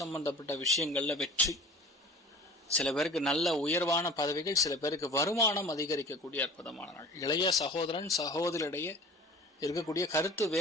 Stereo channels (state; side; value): normal; both; correlation 0.42